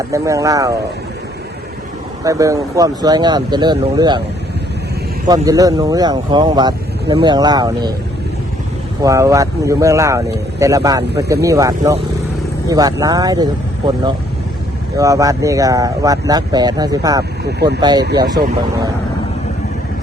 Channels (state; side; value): normal; both; correlation 0.65